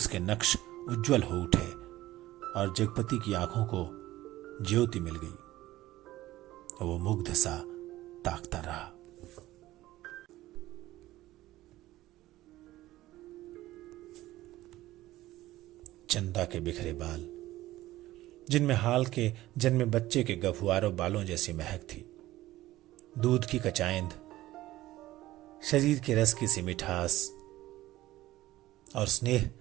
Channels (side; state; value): left; quieter; 16.1 dB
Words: नक्श उज्जवल हो उठे और जगपति की आंखों को ज्योति मिल गई। वो मुग्ध सा ताकता रहा। चंदा के बिखरे बाल, जिनमें हाल के जन्मे बच्चे के गफुआरों बालों जैसी महक थी, दूध की कचाइंद, शरीर के रस की सी मिठास और स्नेह